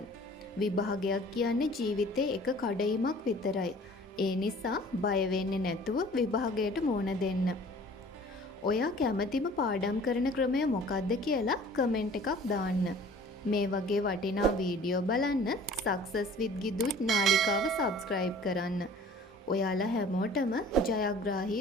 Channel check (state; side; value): normal; both; correlation 0.48